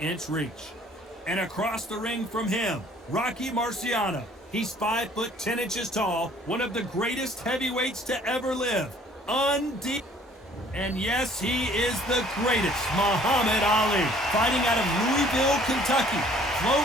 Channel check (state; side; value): normal; both; correlation 0.56